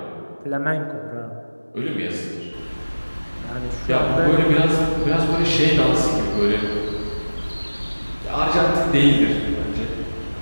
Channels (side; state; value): both; inverted; correlation -1.00